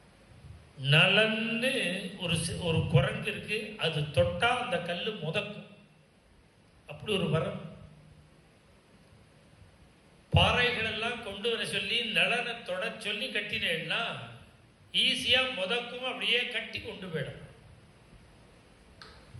நலன்னு ஒரு குரங்கு இருக்கு, அது தொட்டா அந்த கல்லு முதக்கும், அப்படி ஒரு வரம். பாறைகள் எல்லாம் கொண்டு வர சொல்லி நலனை தொட சொல்லி கட்டினேன்னா ஈஸியா முதக்கும், அப்படியே கட்டி கொண்டு போயிடும்.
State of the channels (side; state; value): both; identical; correlation 1.00